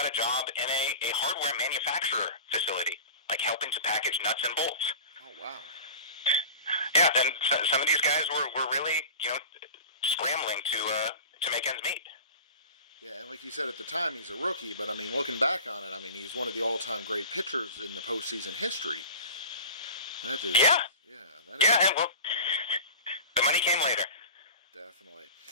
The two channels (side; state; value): both; inverted; correlation -0.36